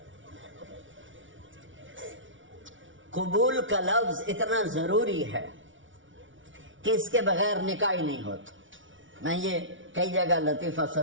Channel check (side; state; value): left; late; 0.56 ms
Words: قبول کا لفظ اتنا ضروری ہے کہ اس کے بغیر نکاح ہی نہیں ہوتا. میں یہ کئی جگہ لطیفہ